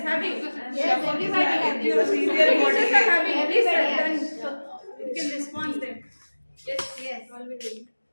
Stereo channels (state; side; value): inverted; both; correlation -1.00